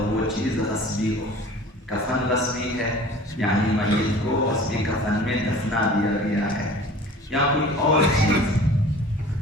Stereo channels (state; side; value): normal; both; correlation 0.44